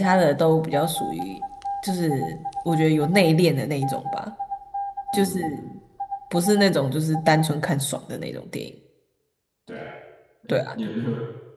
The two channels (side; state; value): both; identical; correlation 1.00